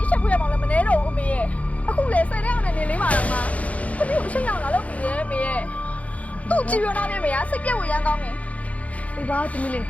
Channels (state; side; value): late; right; 0.068 ms